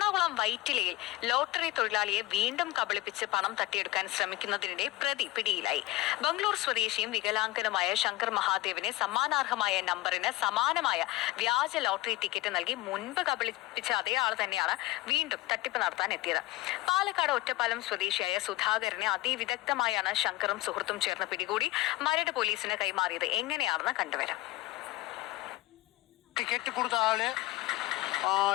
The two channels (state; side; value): quieter; right; 18.5 dB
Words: വൈറ്റിലയിൽ ലോട്ടറി തൊഴിലാളിയെ വീണ്ടും കബളിപ്പിച്ച് പണം തട്ടിയെടുക്കാൻ ശ്രമിക്കുന്നതിനിടെ പ്രതി പിടിയിലായി. ബംഗളൂർ സ്വദേശിയും വികലാംഗനുമായ ശങ്കർ മഹാദേവനെ സമ്മാനാർഹമായ നമ്പറിന് സമാനമായ വ്യാജ ലോട്ടറി ടിക്കറ്റ് നൽകി മുൻപ് കബളിപ്പിച്ച അതേ ആൾ തന്നെയാണ് വീണ്ടും തട്ടിപ്പ് നടത്താൻ എത്തിയത്. പാലക്കാട് ഒറ്റപ്പാലം സ്വദേശിയായ സുധാകരനെ അതിവിദഗ്ധമായാണ് ശങ്കറും സുഹൃത്തും ചേർന്ന് പിടികൂടി മരട് പോലീസിന് കൈമാറിയത്. എങ്ങനെയാണെന്ന് കണ്ടുവരാം. ടിക്കറ്റ് കൊടുത്ത ആള്